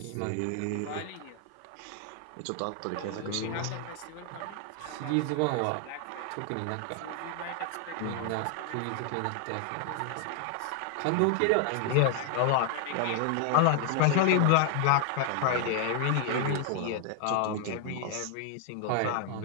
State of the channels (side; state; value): both; different; correlation 0.00